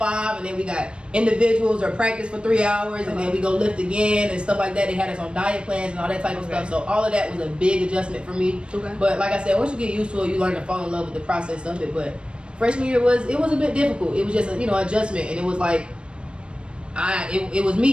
and then we got individuals or practice for 3 hours, and then we go lift again and stuff like that. They had us on diet plans and all that type of stuff. So all of that was a big adjustment for me. But like I said, once you get used to it, you learn to fall in love with the process of it. But freshman year was a bit difficult. It was just a, you know, adjustment, and it was like it was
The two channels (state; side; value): late; left; 0.056 ms